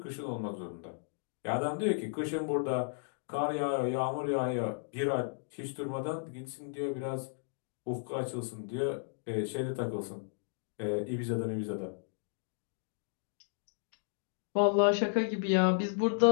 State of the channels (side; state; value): right; silent; digital silence